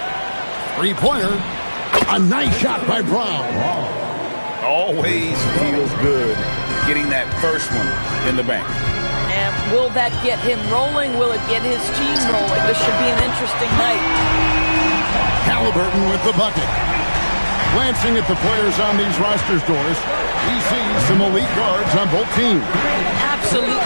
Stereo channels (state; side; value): inverted; both; correlation -1.00